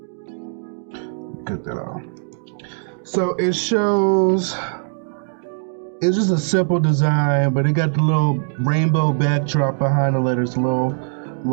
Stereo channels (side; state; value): left; silent; digital silence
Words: Get that off. So it shows, it's just a simple design, but it got the little rainbow backdrop behind the letters,